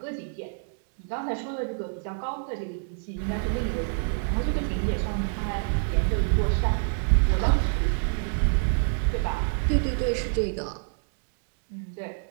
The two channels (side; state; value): left; silent; digital silence